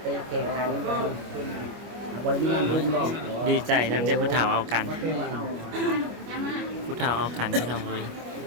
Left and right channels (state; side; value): late; left; 25 ms